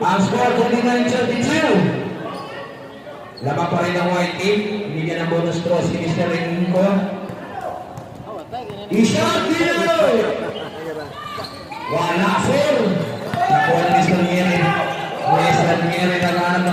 Ang score 29-32. Lamang pa rin ang white team. Binigyan ng bonus to si Mr. Enrico. Ishot dito! Wala, sir! Nakuha ni Mr. Nieri. Mr. Nieri naghahanap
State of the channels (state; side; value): identical; both; correlation 1.00